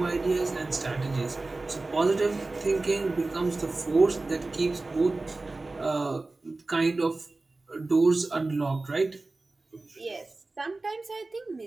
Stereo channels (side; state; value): left; quieter; 3.3 dB